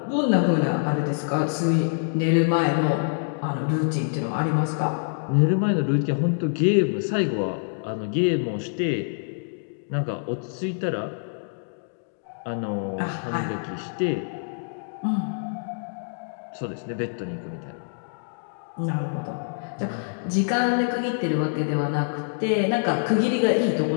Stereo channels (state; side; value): silent; right; digital silence